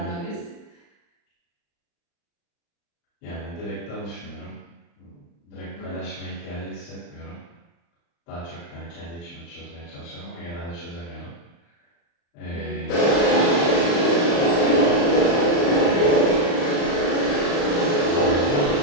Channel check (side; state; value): right; late; 35 ms